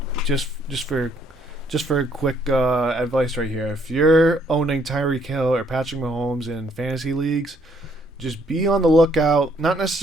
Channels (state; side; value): normal; both; correlation 0.68